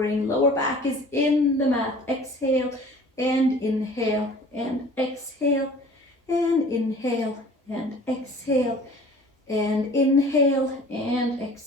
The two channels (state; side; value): normal; both; correlation 0.47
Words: Lower back is in the mat. Exhale and inhale, and exhale and inhale, and exhale and inhale, and